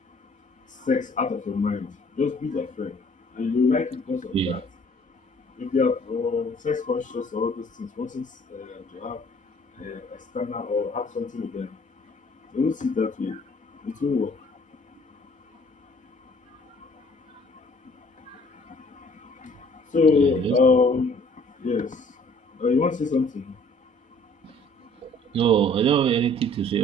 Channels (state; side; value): normal; both; correlation 0.56